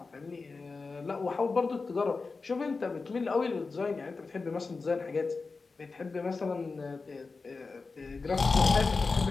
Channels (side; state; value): right; quieter; 4.2 dB